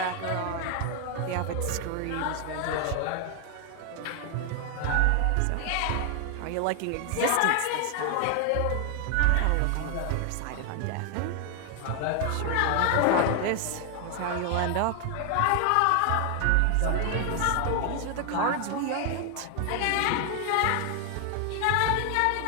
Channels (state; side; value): different; both; correlation 0.00